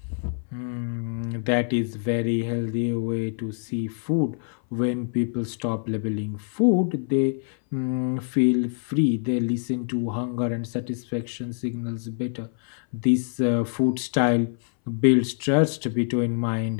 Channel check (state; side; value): silent; right; 60 dB below the other